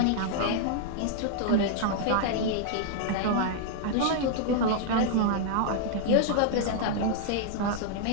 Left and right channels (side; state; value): both; different; correlation 0.00